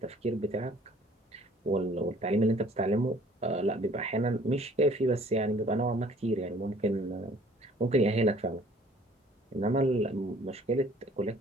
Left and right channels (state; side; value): normal; both; correlation 0.55